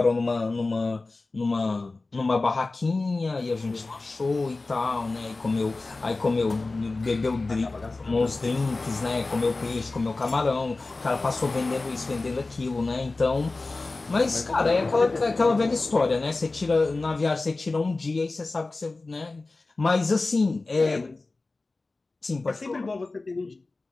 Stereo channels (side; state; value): right; quieter; 3.4 dB